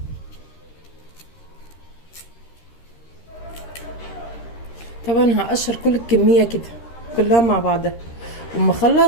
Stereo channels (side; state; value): right; late; 13 ms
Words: طبعا هقشر كل الكمية كده كلها مع بعضها، وأما